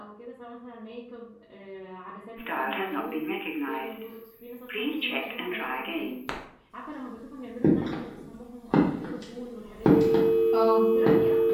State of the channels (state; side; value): identical; both; correlation 1.00